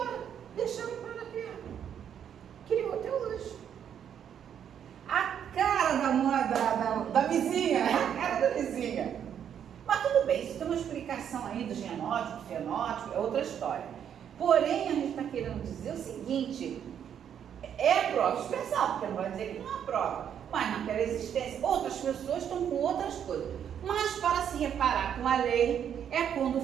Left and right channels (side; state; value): left; quieter; 8.8 dB